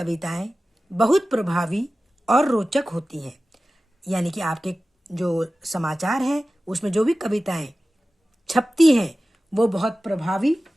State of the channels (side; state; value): both; normal; correlation 0.96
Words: बहुत प्रभावी और रोचक होती हैं। यानी कि आपके जो समाचार है उसमें जो भी कविताएं छपती हैं वो बहुत